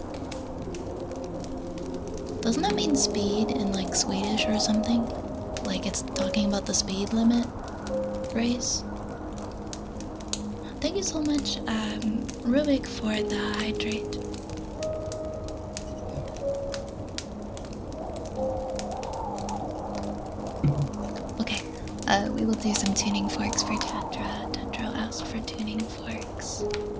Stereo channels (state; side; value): identical; both; correlation 1.00